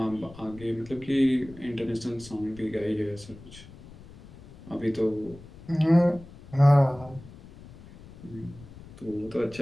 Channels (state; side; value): noise; left; rumble, 19 dB below the sound